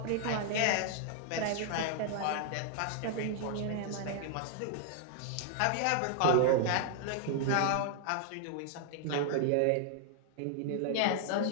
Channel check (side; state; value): both; different; correlation 0.00